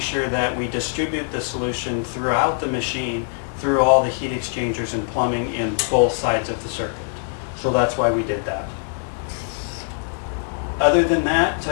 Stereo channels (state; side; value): silent; right; digital silence